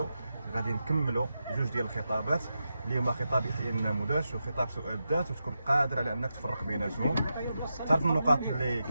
غادي نكملوا جوج ديال الخطابات اللي هما خطاب يحيى النموذج وخطاب سؤال الذات، وتكون قادر على انك تفرق بيناتهم، تعرف النقاط اللي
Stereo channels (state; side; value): inverted; both; correlation -0.88